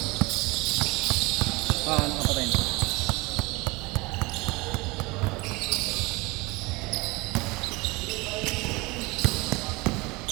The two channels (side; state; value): left; quieter; 24.3 dB